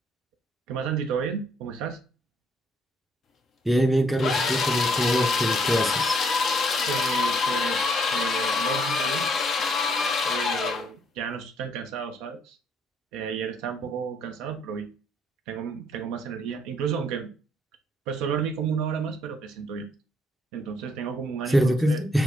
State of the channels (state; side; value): normal; both; correlation 0.69